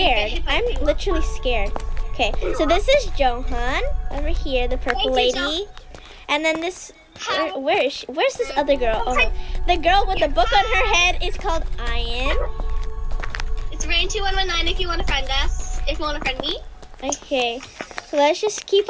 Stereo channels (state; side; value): identical; both; correlation 1.00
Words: I'm literally scared. Okay, so this is Johan over here, the purple lady. And then this, where is she? Where's this other girl? Oh, the girl with the book on her head is called Ian. It's Rain2119 if you want to friend us. If you want to friend me. Okay, so let's just keep